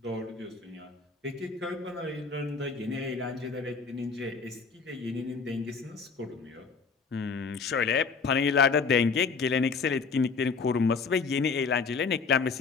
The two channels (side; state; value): right; quieter; 5.0 dB